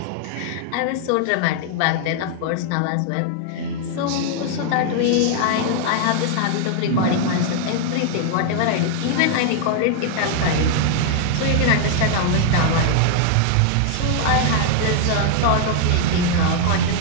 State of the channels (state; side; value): different; both; correlation 0.00